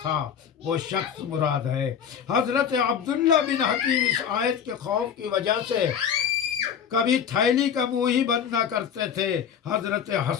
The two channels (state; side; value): quieter; right; 7.9 dB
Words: تھا، وہ شخص مراد ہے۔ حضرت عبداللہ بن حکیم اس آیت کے خوف کی وجہ سے کبھی تھیلی کا منہ ہی بند نہ کرتے تھے۔ حضرت